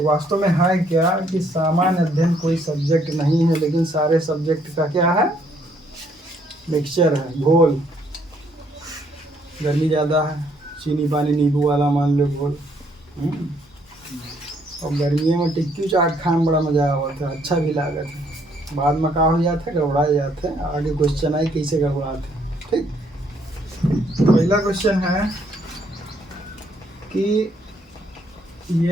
वास्तव में है क्या कि सामान्य अध्ययन कोई सब्जेक्ट नहीं है, लेकिन सारे सब्जेक्ट का क्या है, मिक्सचर है, घोल। गर्मी ज़्यादा है, चीनी पानी नींबू वाला मान लो घोल। और गर्मियों में टिक्की चाट खाने में बड़ा मज़ा आता है, अच्छा भी लागत है। बाद में का हो जाते हैं, गड़बड़ा जाते हैं। आगे क्वेश्चन आई कैसे गड़बड़ाते हैं, ठीक। पहला क्वेश्चन है कि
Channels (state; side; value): normal; both; correlation 0.68